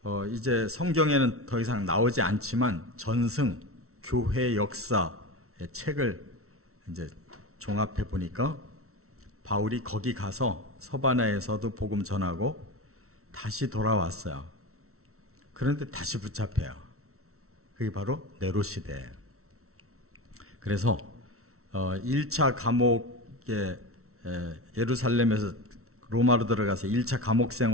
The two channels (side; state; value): left; late; 0.63 ms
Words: 이제 성경에는 더 이상 나오지 않지만 전승 교회 역사의 책을 이제 종합해 보니까 바울이 거기 가서 서바나에서도 복음 전하고 다시 돌아왔어요. 그런데 다시 붙잡혀요. 그게 바로 네로 시대예요. 그래서 1차 감옥에 예루살렘에서 로마로 들어가서 1차 감옥